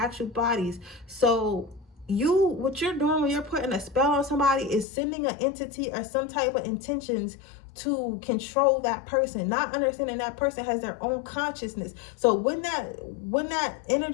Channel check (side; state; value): right; drops out; at 4.9 s